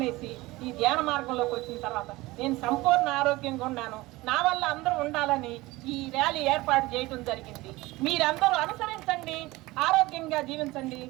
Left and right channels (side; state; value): left; quieter; 20.2 dB